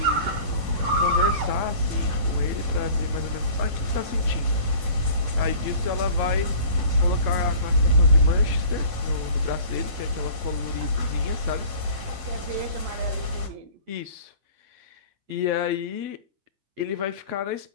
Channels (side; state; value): left; late; 10 ms